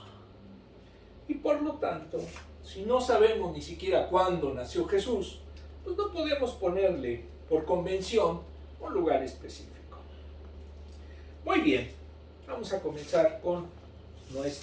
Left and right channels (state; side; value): identical; both; correlation 1.00